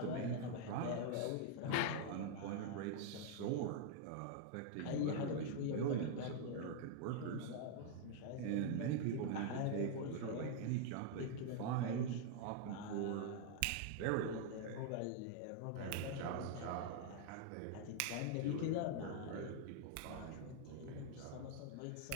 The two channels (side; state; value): both; different; correlation 0.00